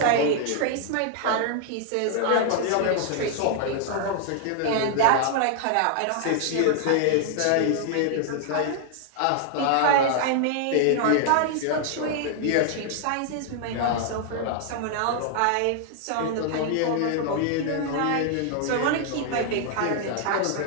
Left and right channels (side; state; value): both; different; correlation 0.00